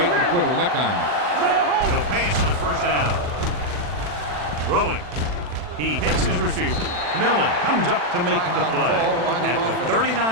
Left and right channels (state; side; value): late; left; 40 ms